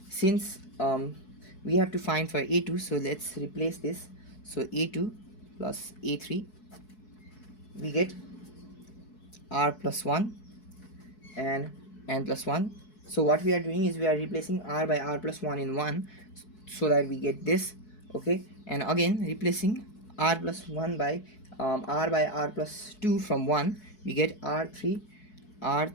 since we have to find for a2, so let's replace this. So a2 plus a3, we get r plus 1 and n plus 1. So what we are doing is we are replacing r by r plus 1 in 1, so that we get this. Okay, and again replacing r plus 1 by r by r plus 2 from 1, we get r3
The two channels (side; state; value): right; late; 4.7 ms